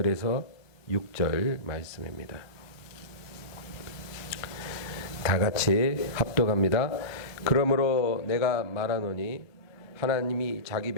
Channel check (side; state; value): right; late; 1.2 ms